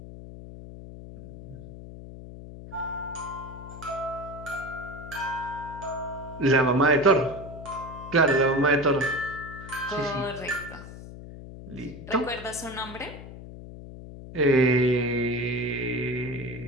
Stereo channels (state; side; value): noise; left; hum, 13 dB below the sound